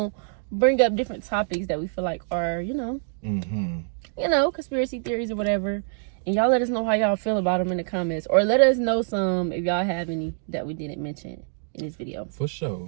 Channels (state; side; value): silent; left; digital silence